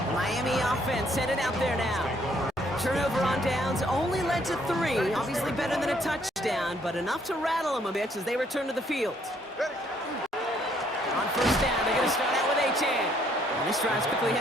The Miami offense headed out there now. Turnover on downs only led to 3. Obviously better than a touchdown, but enough to rattle them a bit as they return to the field. On first down, they're going to start out with Achane. And this drive's quickly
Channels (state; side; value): normal; both; correlation 0.67